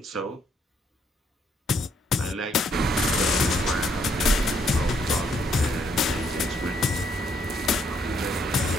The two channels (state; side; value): normal; both; correlation 0.71